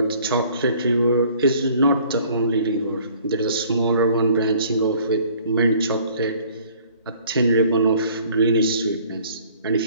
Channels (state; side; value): inverted; both; correlation -0.56